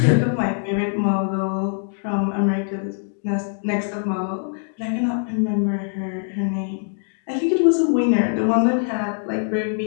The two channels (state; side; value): silent; right; 64 dB below the other